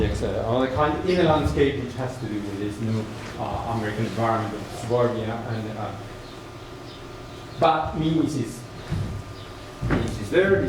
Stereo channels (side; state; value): both; identical; correlation 1.00